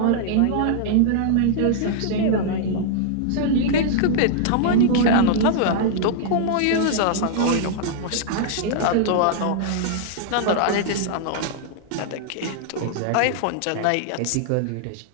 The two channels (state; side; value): different; both; correlation -0.01